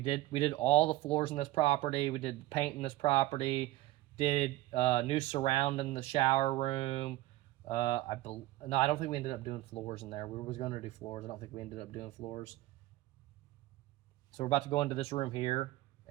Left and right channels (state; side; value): quieter; left; 17.3 dB